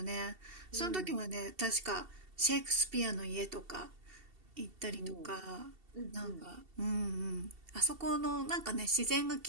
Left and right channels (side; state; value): left; late; 2.7 ms